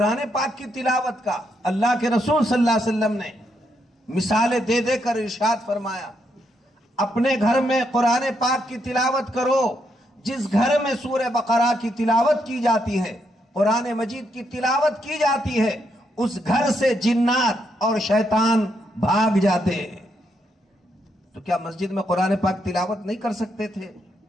پاک کی تلاوت کا اللہ کے رسول صلی اللہ علیہ وسلم نے مثالیں دے دے کر ارشاد فرمایا، اپنے گھر میں قرآن پاک کی تلاوت کرو۔ جس گھر میں سورہ بقرہ کی تلاوت کی جاتی ہے، قرآن مجید کی تلاوت کی جاتی ہے، اس گھر سے جنات اور شیطان بھاگ جاتے ہیں۔ تو کیا مسجد میں قرآن پاک تلاوت نہیں کر سکتے تھے؟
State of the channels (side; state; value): both; normal; correlation 0.78